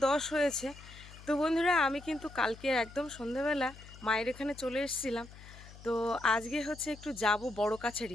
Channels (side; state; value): left; noise; hum, 18 dB below the sound